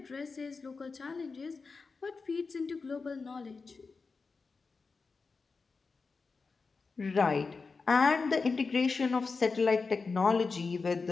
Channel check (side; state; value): right; quieter; 4.4 dB